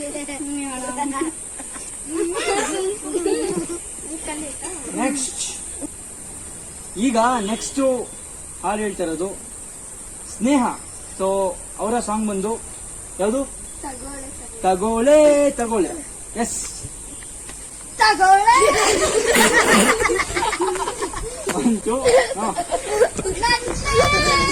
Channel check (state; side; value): identical; both; correlation 1.00